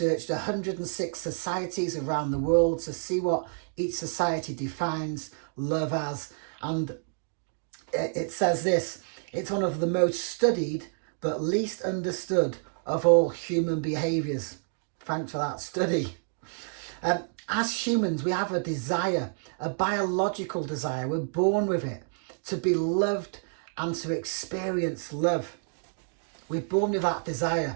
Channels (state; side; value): silent; left; digital silence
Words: 106 societies around the world to see what each society defines love as. And it says this: it's one of the most studied but least understood of all human behaviours. Thanks for that study. As humans, we have a desire, a biological desire. We're born with it, to be loved and to experience love. We're born with that